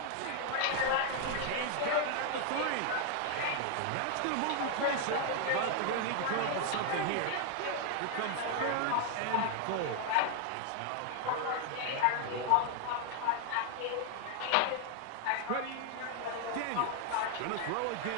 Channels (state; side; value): different; both; correlation 0.00